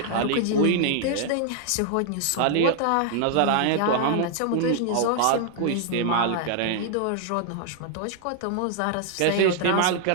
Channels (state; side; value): different; both; correlation 0.00